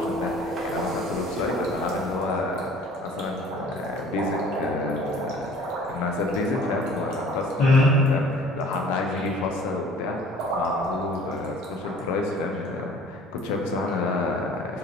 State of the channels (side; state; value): both; normal; correlation 0.50